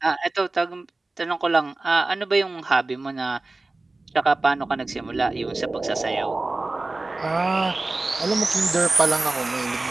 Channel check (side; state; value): left; quieter; 3.2 dB